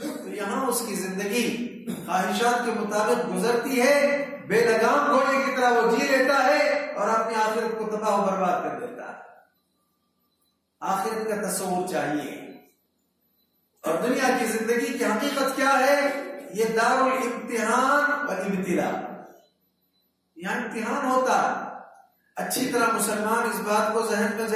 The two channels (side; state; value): both; identical; correlation 1.00